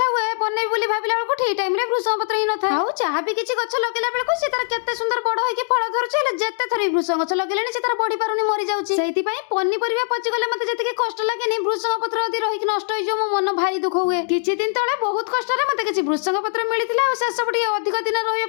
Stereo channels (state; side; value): silent; right; digital silence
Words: हुए बनेबी बोली भाबिला बेलको ठीक टाइम रे भृसंग पत्र ही न थाए आउ चाहा भी किछि गछ लगेला बेलको से तार केते सुंदर बड़ होई कि फळ धरुछि हेले जेते थरी भृसंग गछ लगेलेनी से तार बढी पारुनी मरि जाउछि सेति पई पन्नी परिबा पचि गले मते जति के कष्ट लागेनी भृसंग पत्र यदि रहि कि नष्ट होई जो मो मन भारी दुख हुए किछि दिन तळे बहुत कष्ट रे मते किछि भृसंग पत्र मिलितिला आ से सब टिके अधिक दिन रहिया